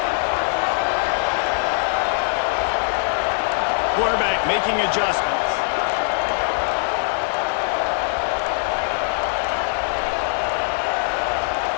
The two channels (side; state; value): right; silent; digital silence